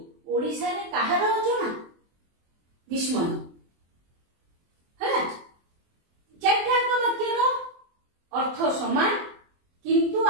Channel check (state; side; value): late; left; 24 ms